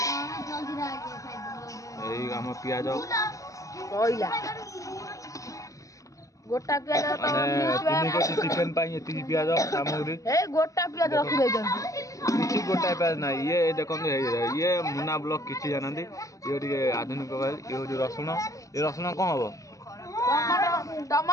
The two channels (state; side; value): late; right; 0.16 ms